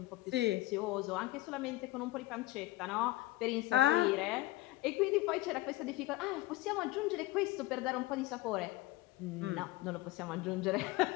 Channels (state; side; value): quieter; right; 18.2 dB